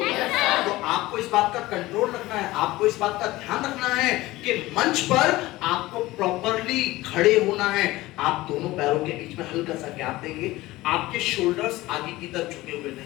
तो आपको इस बात का कंट्रोल रखना है, आपको इस बात का ध्यान रखना है कि मंच पर आपको प्रॉपरली खड़े होना है। आप दोनों पैरों के बीच में हल्का सा गैप देंगे, आपके शोल्डर्स आगे की तरफ झुके हुए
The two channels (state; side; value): quieter; right; 18.4 dB